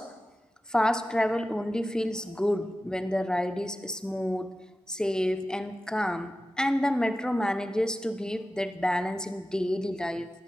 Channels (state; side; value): normal; both; correlation 0.94